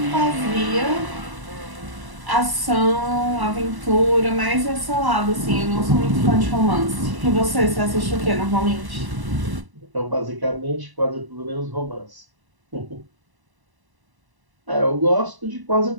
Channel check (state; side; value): late; left; 1.0 ms